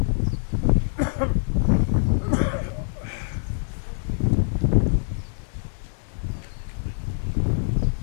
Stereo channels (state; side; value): silent; right; digital silence